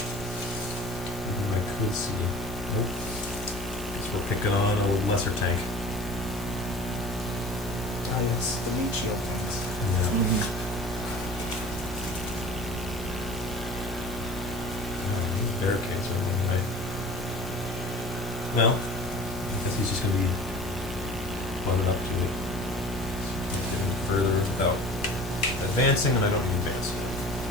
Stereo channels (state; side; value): noise; left; hiss, 17 dB below the sound